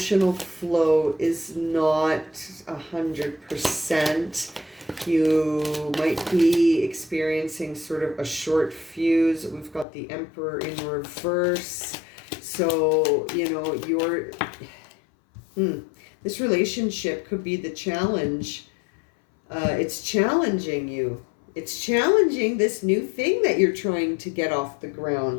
flow is not 100%. You might be experiencing sort of a short fuse. We've got the Emperor in reverse. So, you know, this relationship could be the challenge. It's challenging you. It's challenging this new thing that you're trying to get off the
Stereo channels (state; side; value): drops out; right; at 9.9 s